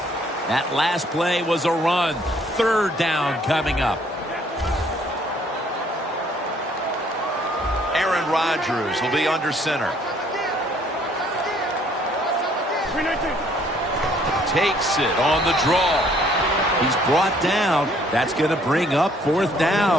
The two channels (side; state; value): both; normal; correlation 0.62